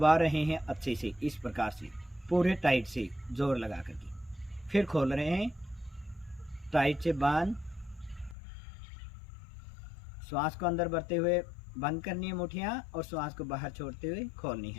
रहे हैं अच्छे से, इस प्रकार से पूरे टाइट से जोर लगा करके। फिर खोल रहे हैं, टाइट से बांध, श्वास को अंदर भरते हुए बंद करनी है मुठियां और श्वास को बाहर छोड़ते हुए खोलनी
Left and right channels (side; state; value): right; drops out; at 8.3 s